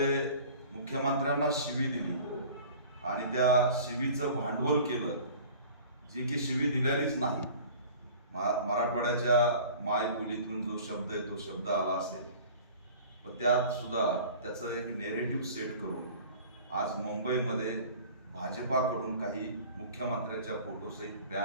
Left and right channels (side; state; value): both; inverted; correlation -0.45